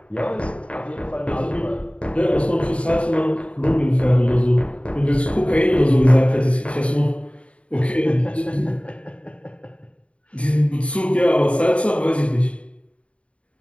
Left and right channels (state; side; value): late; right; 0.061 ms